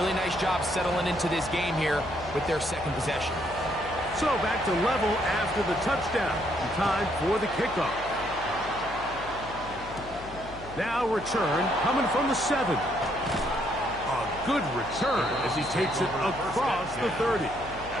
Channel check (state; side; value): noise; left; hum, 16 dB below the sound